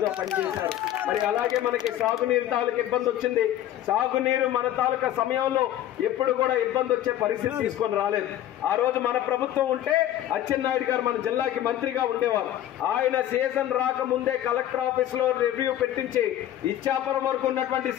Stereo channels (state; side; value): quieter; right; 12.3 dB